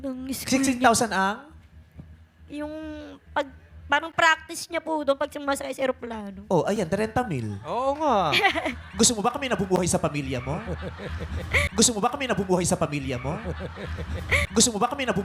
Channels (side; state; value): both; identical; correlation 1.00